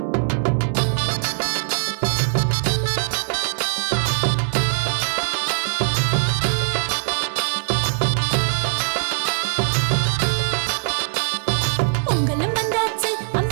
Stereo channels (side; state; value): left; silent; 64 dB below the other